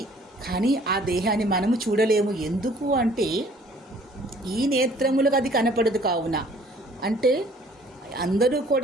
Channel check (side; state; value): both; normal; correlation 0.56